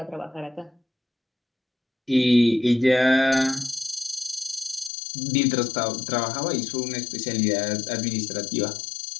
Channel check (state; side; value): drops out; right; at 4.9 s